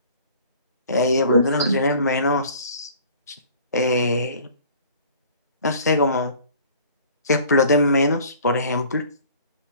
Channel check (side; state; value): both; inverted; correlation -0.49